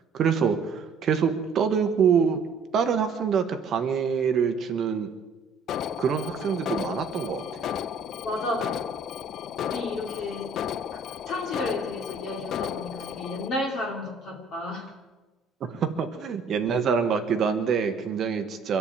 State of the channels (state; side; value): quieter; left; 3.9 dB